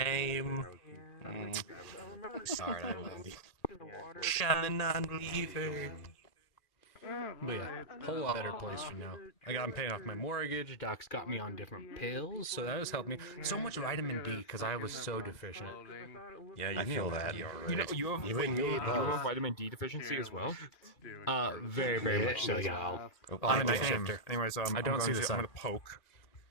Sorry, I'm non-believer. But yeah, whole lot better place for now. I'm paying off my mortgage. Doc's got me on different pills, so that has helped me. So much vitamin D because I was so deficient. Yeah, you feel that. You know, you have, You and me you both. have vitamin D deficiency as well. Very, very much so. Gal. I'm a Night night shifter. shifter. Anyways, I don't see this. I'm gonna poke.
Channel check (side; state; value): right; late; 2.4 ms